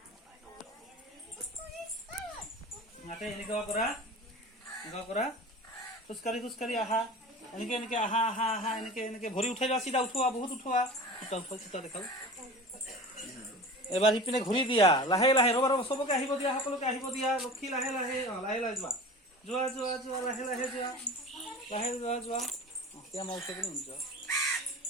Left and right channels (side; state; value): both; normal; correlation 0.36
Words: এনেকুৱা কৰা খোজকাঢ়ি আহা। এনেকে আহা এনেকে ভৰি উঠাই লোৱা, চিধা উঠোৱা, বহুত উঠোৱা। চিধা দেখাও। এবাৰ সিপিনে ঘূৰি দিয়া, লাহে লাহে। ৰবা চবকে আহিব দিয়া, সকলোকে আহিব দিয়া। লক্ষী লাহে লাহে যোৱা লাহে লাহে যোৱা।